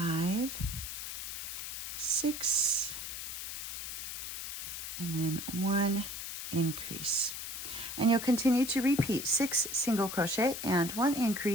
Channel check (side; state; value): left; noise; hiss, 6 dB below the sound